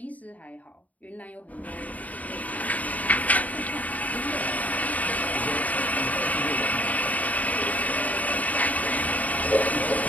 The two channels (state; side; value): late; right; 0.073 ms